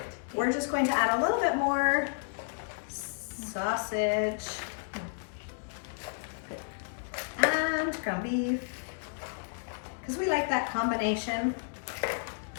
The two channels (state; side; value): silent; right; digital silence